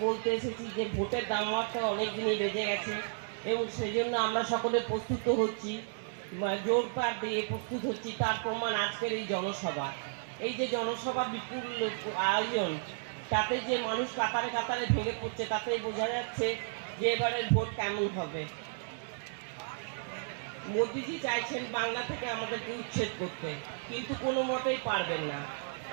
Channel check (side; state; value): left; silent; digital silence